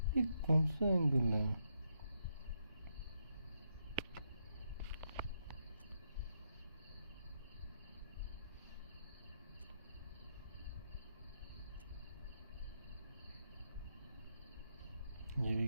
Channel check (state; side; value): inverted; both; correlation -0.80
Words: ये कौन सा angle है? ये भी